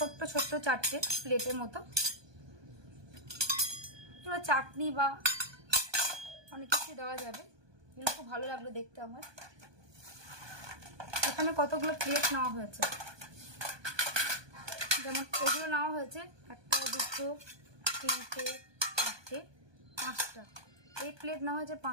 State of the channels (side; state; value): left; late; 1.2 ms